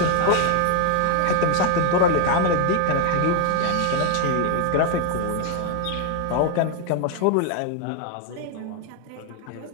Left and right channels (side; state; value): both; different; correlation 0.01